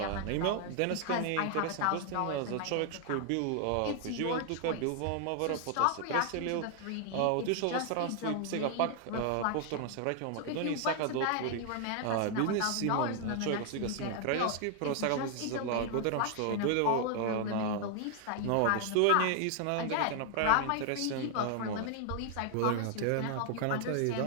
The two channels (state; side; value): different; both; correlation 0.00